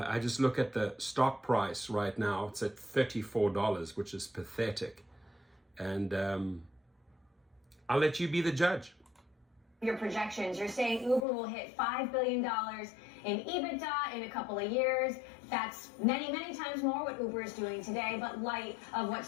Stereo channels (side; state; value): right; drops out; at 11.2 s